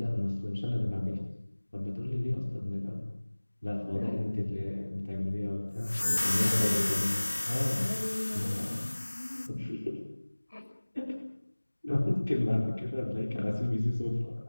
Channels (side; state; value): both; inverted; correlation -1.00